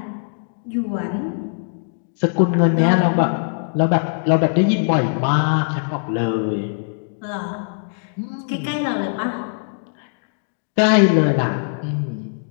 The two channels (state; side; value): silent; right; digital silence